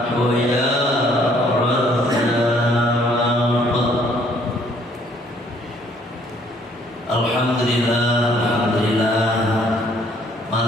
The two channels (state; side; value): normal; both; correlation 0.63